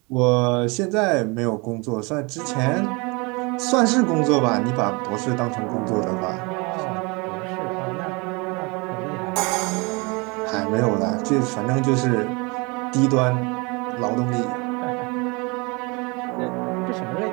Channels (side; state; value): left; quieter; 28.1 dB